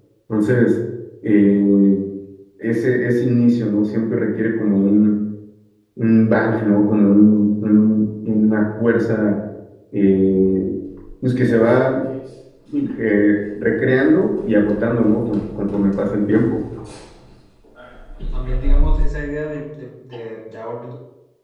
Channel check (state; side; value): identical; both; correlation 1.00